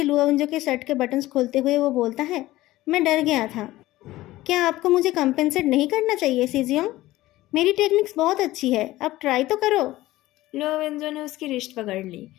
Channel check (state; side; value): quieter; right; 16.9 dB